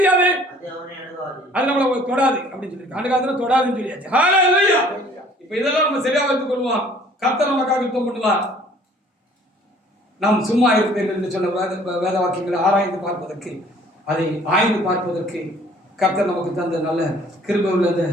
அது நம்மளை தொடாது அப்படின்னு சொல்லி அந்த காலத்துல தொடாதுன்னு சொல்லியாச்சு. ஹalleluya. இப்ப இதெல்லாம் நம்ம சரியா வைத்துக் கொள்வோம். கர்த்தர் நமக்காக யுத்தம் பண்ணுவார். நாம் சும்மா இருப்பீர்கள் என்று சொன்ன வேத வாக்கியங்களை ஆராய்ந்து பார்ப்பதற்கு, அதை ஆய்ந்து பார்ப்பதற்கு கர்த்தர் நமக்கு தந்த நல்ல கிருபை உள்ள இந்த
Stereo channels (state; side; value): normal; both; correlation 0.55